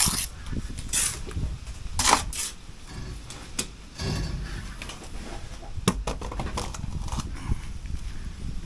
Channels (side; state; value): both; identical; correlation 1.00